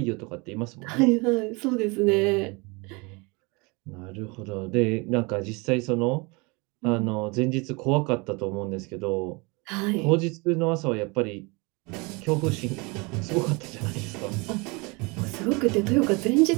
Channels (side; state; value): left; quieter; 28.0 dB